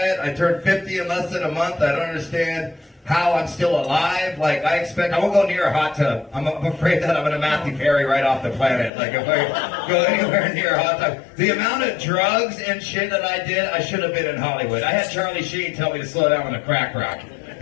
I turned 50 in less than a month. I don't understand how I'm still alive. Like, I won't go near a hot tub. I'm afraid that I'm gonna Matthew Perry right off the planet. Like, if I go anywhere near a hot tub. The amount of drugs and shit that I did, I should have been in Hollywood. I had Charlie Sheen tell me to slow down on the crack rock.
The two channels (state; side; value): drops out; right; at 8.9 s